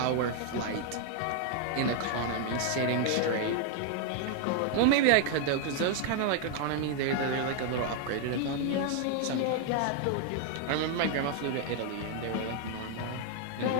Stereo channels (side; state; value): both; different; correlation 0.00